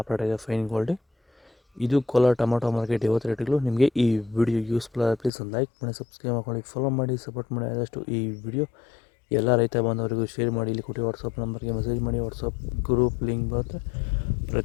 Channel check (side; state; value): right; drops out; at 5.3 s